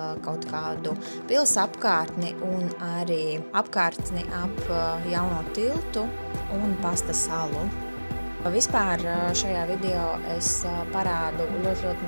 kaut kādu pils apkārtni un arī apkārtni ap jauno tiltu un Pasta salu. Vispār šajā video es parādu ļoti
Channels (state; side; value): inverted; both; correlation -1.00